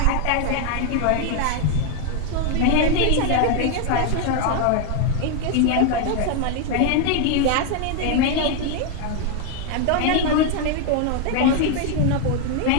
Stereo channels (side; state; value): both; different; correlation 0.01